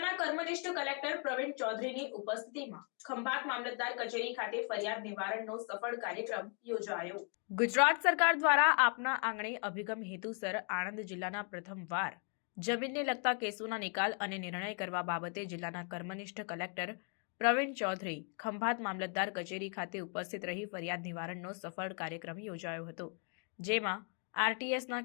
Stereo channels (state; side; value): quieter; right; 39.7 dB